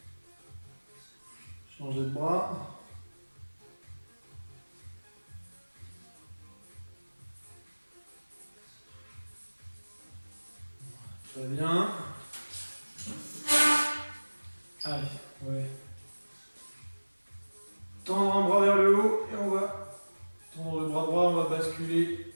Changer de bras. Très bien. Allez, ouais. Tendre un bras vers le haut et on va tendre le bras droit, on va basculer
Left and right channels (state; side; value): inverted; both; correlation -1.00